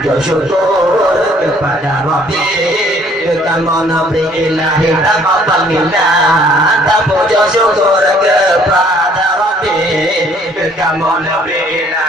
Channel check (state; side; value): normal; both; correlation 0.60